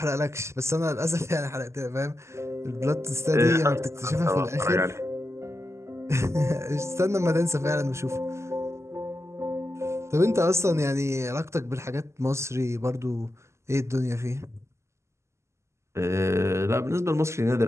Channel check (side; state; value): left; late; 0.13 ms